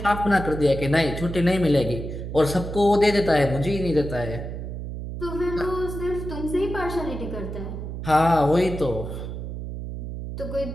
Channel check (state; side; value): noise; right; hum, 7 dB below the sound